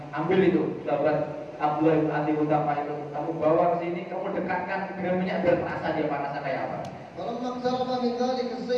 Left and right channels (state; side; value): identical; both; correlation 1.00